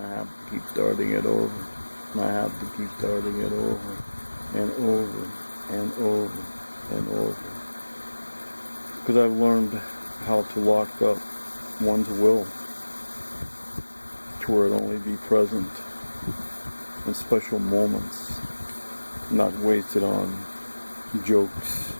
I have to keep starting it over. And I have to keep starting it over and over and over and over. Because I've learned how to lock up one's will to where it only be present in special moments, not wasted on jokes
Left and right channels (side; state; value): both; inverted; correlation -1.00